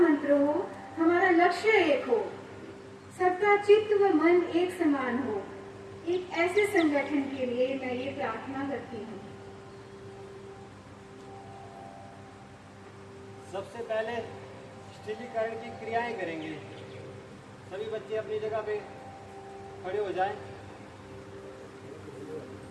मंत्र हो, हमारा लक्ष्य एक हो, सबका चित्त व मन एक समान हो। एक ऐसे संगठन के लिए मैं ये प्रार्थना करती हूँ। सबसे पहले स्थिरीकरण की क्रियाएं करेंगे। सभी बच्चे अपनी जगह पे खड़े हो जाएं।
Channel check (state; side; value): identical; both; correlation 1.00